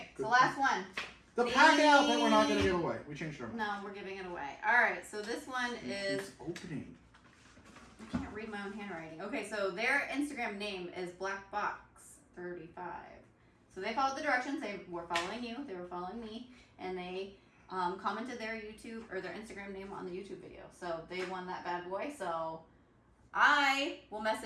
so last one. The PACKOUT that we're not going to give away. We changed our mind. No, we're giving it away. All right, so this one is... opening. I can't read my own handwriting. Okay, so their Instagram name is BlackBox35. So they followed the directions. They were following you. They were following me. And they commented their YouTube or their Instagram name on the YouTube video. So they won that bad boy. So I will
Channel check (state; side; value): identical; both; correlation 1.00